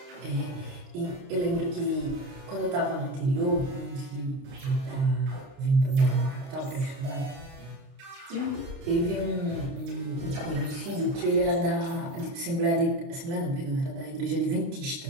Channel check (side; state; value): left; late; 30 ms